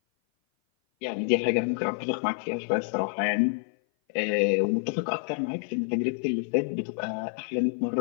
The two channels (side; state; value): right; silent; 56 dB below the other